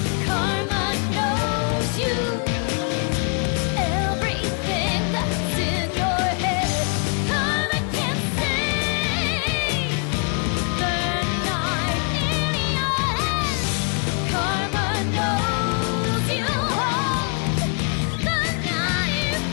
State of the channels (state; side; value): quieter; right; 40.0 dB